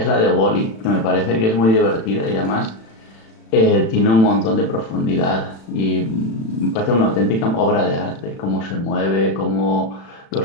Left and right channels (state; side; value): late; right; 36 ms